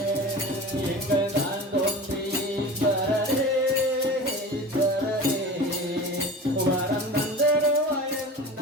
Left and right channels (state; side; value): normal; both; correlation 0.34